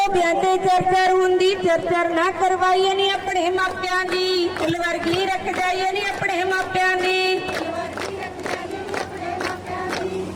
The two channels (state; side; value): identical; both; correlation 1.00